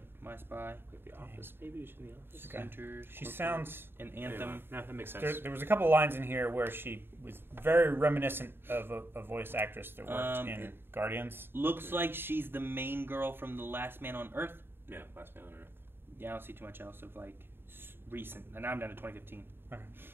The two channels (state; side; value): late; left; 0.11 ms